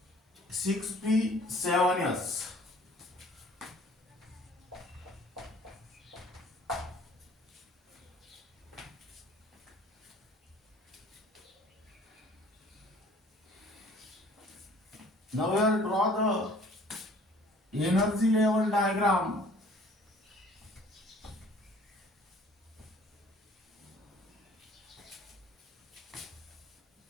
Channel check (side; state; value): both; normal; correlation 0.53